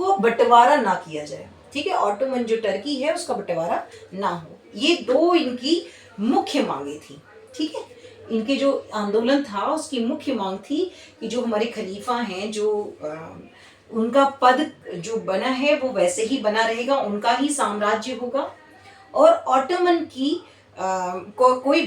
बंटवारा ना किया जाए। ठीक है, ऑटोमन जो टर्की है उसका बंटवारा ना हो। ये दो इनकी मुख्य मांगे थी। ठीक है, इनके जो आंदोलन था उसकी मुख्य मांग थी कि जो हमारे खलीफा हैं, जो उनका पद जो बना है वो वैसे ही बना रहेगा, उनका ही साम्राज्य होगा, और ऑटोमन की कोई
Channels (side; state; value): both; identical; correlation 1.00